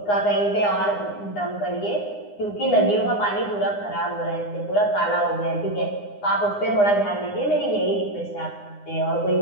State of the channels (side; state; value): right; late; 9.8 ms